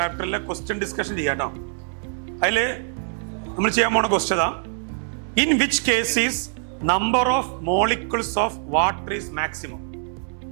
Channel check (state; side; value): silent; left; digital silence